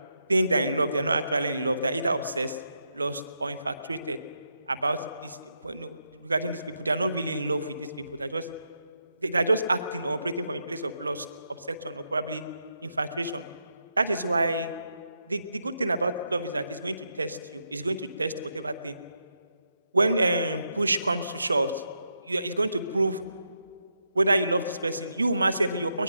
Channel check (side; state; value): both; inverted; correlation -0.82